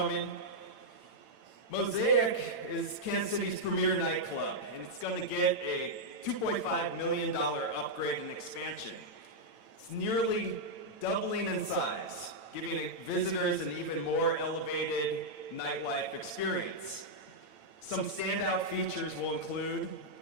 Mosaic is Kansas City's premier nightclub, and it's going to get a $2.5 million upgrade and expansion. It's nearly doubling in size, giving visitors an even more elevated nightlife experience. Some standout features will include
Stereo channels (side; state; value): right; late; 8.9 ms